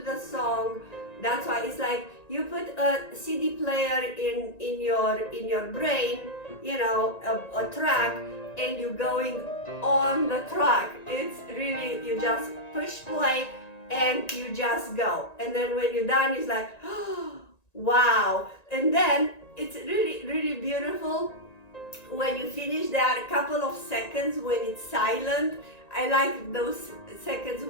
the song. That's why it's like you put a CD player in your brain, a track, and you're going on the track. It's really, you just push play and you just go. And then when you're done, it's like, oh, wow. And then it's really, really beautiful when you finish that, a couple of seconds when it's silent. I like those seconds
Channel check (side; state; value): right; late; 1.9 ms